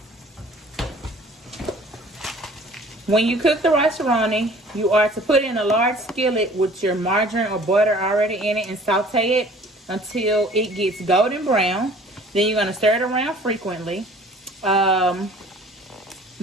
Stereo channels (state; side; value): normal; both; correlation 0.50